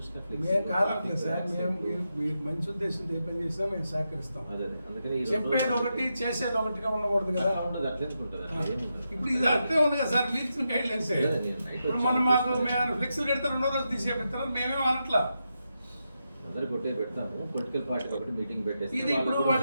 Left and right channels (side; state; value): both; inverted; correlation -0.86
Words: మేము కాదట్లేదు సార్, మేము మీరు మంచి ఉద్దేశంతో ఏ పని చేసినా మేము సహకరిస్తాం. అదే అందుకని చెప్పేది ఒకటి చేసేది ఒకటిగా ఉండకూడదు కదా. అట్లా ఉంటుంది. ఇప్పుడు ఇది అట్లే ఉంది కదా సార్, మీరు ఇచ్చిన గైడ్ లైన్స్. ఇప్పుడు మనం మాకు మేము ఫ్లెక్సీలు కడితే 2వ రోజు తీసేపిస్తారు, మేమేం అనట్లా. అందరు కొట్టే పెడతాము. పొలిటికల్ పార్టీ ఒకటి మీటింగ్ పెట్టేసి ఇది ఇప్పుడు